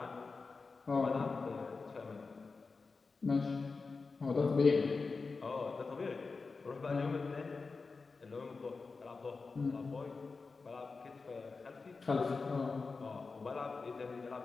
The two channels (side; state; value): right; quieter; 4.3 dB